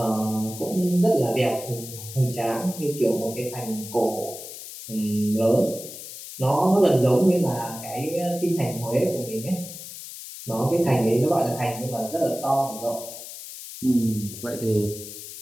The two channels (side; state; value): left; noise; hiss, 12 dB below the sound